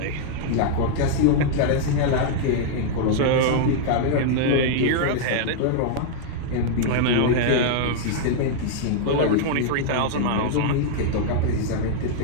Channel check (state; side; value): different; both; correlation -0.01